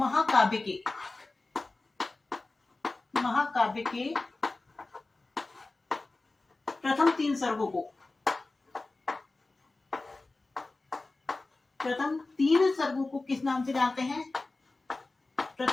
के, महाकाव्य के प्रथम 3 सर्गों को, प्रथम 3 सर्गों को किस नाम से जानते हैं?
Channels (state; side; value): quieter; right; 3.3 dB